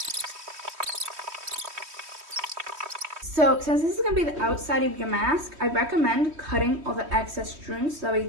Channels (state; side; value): late; left; 3.1 ms